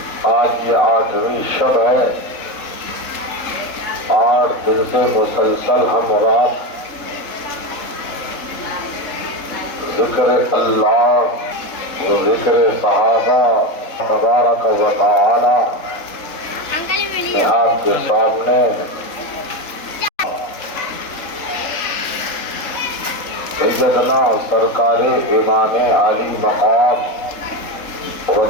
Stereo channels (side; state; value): right; late; 3.7 ms